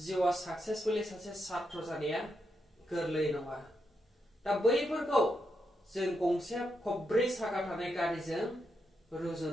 साक्सेसफुलि सासे छात्र जानाया गोरलै नङा। दा बैफोरखौ जों गंसे खब्रै साखा थानाय गारिजों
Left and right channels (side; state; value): both; normal; correlation 0.83